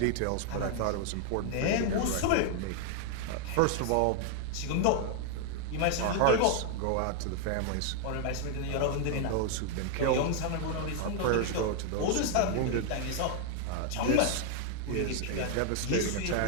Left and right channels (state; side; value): different; both; correlation 0.00